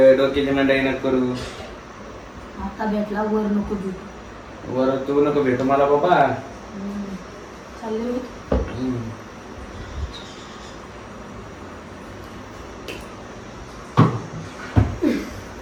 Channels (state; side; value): identical; both; correlation 1.00